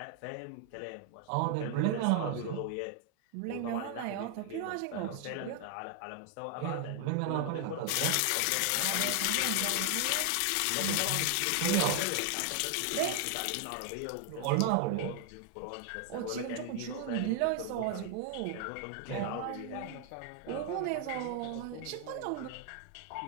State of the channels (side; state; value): both; different; correlation 0.00